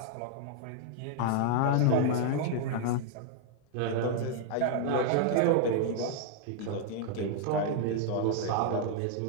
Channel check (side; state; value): both; different; correlation -0.01